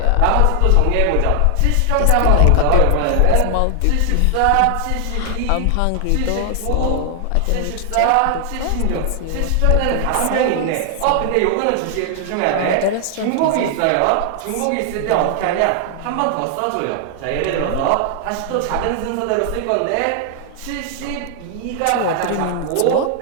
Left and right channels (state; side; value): different; both; correlation 0.00